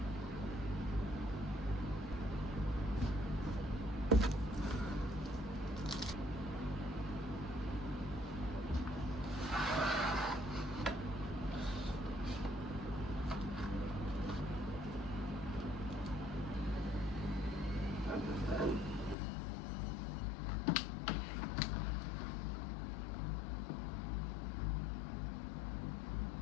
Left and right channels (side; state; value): right; drops out; at 19.2 s